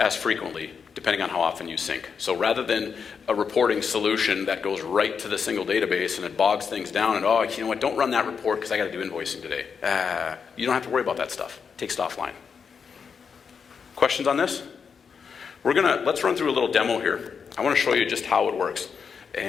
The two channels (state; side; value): quieter; right; 6.2 dB